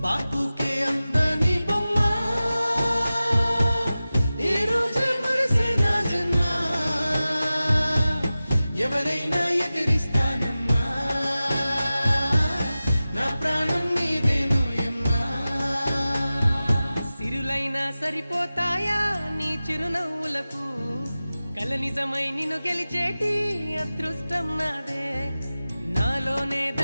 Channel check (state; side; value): inverted; both; correlation -0.96